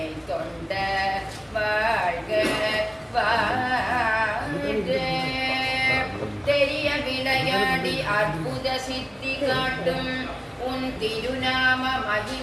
தொண்ட வாழ்க வாழ்க. தெரிய விளையாடி அற்புத சித்தி காட்டும் உன் திருநாம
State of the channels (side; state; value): both; identical; correlation 1.00